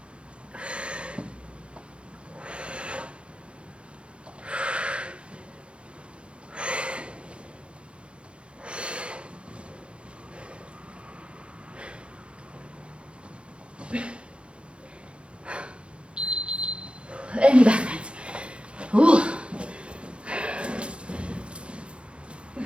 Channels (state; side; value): late; left; 0.058 ms